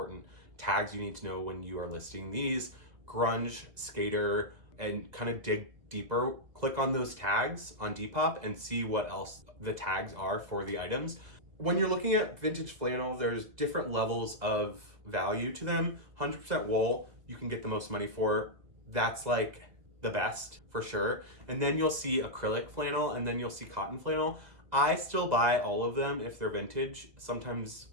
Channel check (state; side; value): late; left; 2.0 ms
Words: tags you need to know when you are listing these. Grunge, skater, and kind of dig deeper. Click on those tags on Depop and see what else the tags are for the items. When you're looking at vintage flannel, there's different levels of value to them. 100% wool, you can get the most money for. That's like the best for sure. And then you'll see acrylic flannel and then you'll see cotton flannel. I still buy all of them if they're vintage. Sometimes